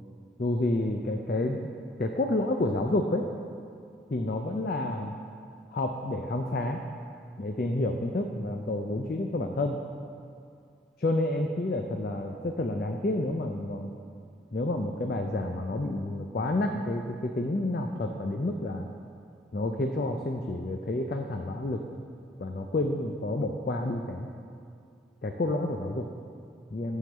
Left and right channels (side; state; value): both; normal; correlation 0.59